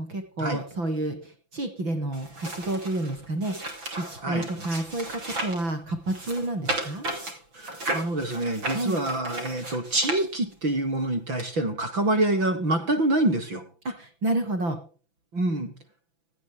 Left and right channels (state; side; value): late; left; 6.0 ms